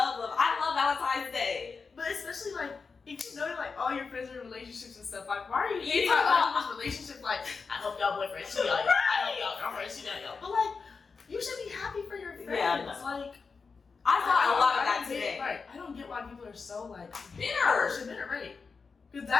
love. I love Valentine's Day. But especially, like, if you know, like, all your friends are in relationships and stuff, like, why are you hating Yeah. on other people's relationships? Like, I hope y'all boyfriends cheat on y'all. I hope y'all girlfriends cheat on y'all. But, like, you should be happy for your friends. Yeah, no. Like, I thought a lot of that don't get- today. Right. I don't get why people are so, like, Bitter. bitter, right? Because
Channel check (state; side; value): quieter; right; 4.9 dB